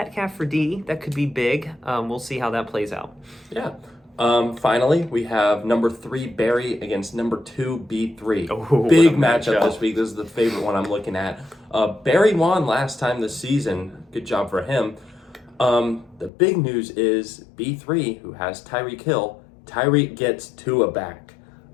for D. That could be big. We'll see how that plays out. Yeah. Finally, we have number 3 Barry against number 2 B3. Oh, big what a matchup matchup. this week. This is the favorite one I'm looking at. Barry won last time this season. Good job for him. The big news is B3, who has Tyreek Hill. Tyreek gets Tua back.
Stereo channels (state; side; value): drops out; right; at 16.3 s